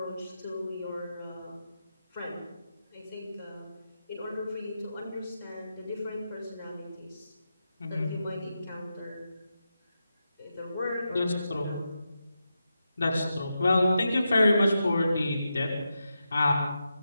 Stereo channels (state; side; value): inverted; both; correlation -0.88